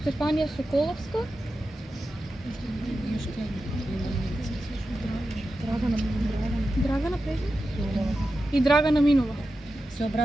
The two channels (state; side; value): normal; both; correlation 0.91